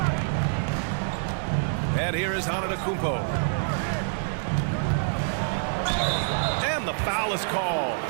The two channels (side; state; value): left; silent; 61 dB below the other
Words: And here is Antetokounmpo. And the foul is called.